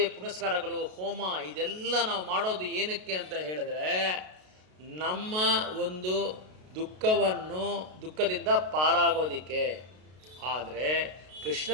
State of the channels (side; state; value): left; late; 33 ms